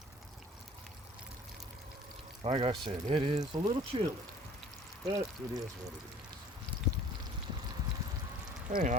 Like I said, it is a little chilly, but it is what it is. Hey,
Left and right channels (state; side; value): normal; both; correlation 0.50